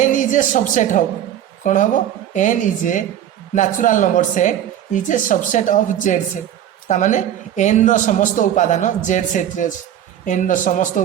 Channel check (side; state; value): left; quieter; 10.8 dB